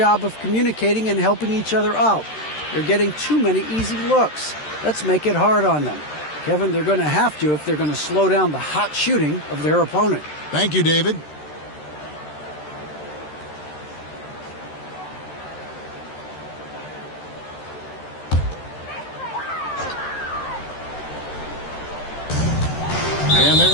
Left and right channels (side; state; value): right; late; 13 ms